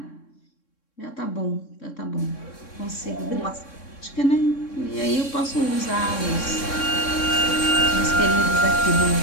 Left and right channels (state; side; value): late; right; 3.6 ms